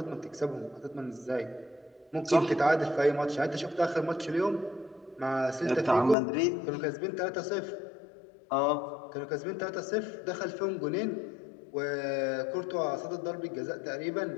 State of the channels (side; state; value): right; drops out; at 6.2 s